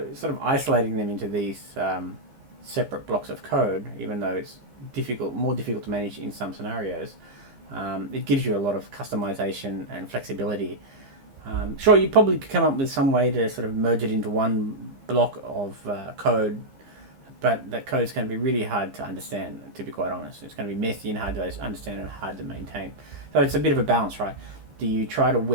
sort of isolating them into these separate blocks of code, even though it's more difficult to manage in some scenarios, it gives you a lot of customization and flexibility. Sure, you probably could come up with some way to sort of merge it into one block of code, but that code is going to be really hard to understand, to be quite honest. It's going to be messy and hard to understand and hard to maintain. So it's a bit of a balance, right? Do you try to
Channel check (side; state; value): left; late; 15 ms